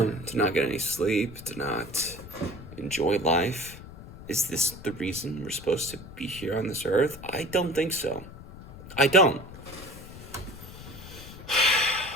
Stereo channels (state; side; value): noise; left; rumble, 15 dB below the sound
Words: not get any sleep? To not enjoy life? Is this the reason we're supposed to be here on this earth? I don't think so. I don't.